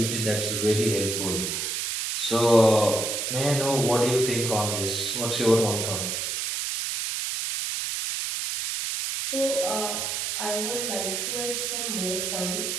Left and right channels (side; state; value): right; noise; hiss, 2 dB below the sound